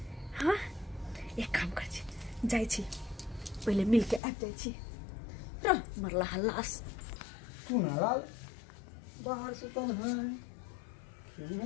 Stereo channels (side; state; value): right; drops out; at 4.2 s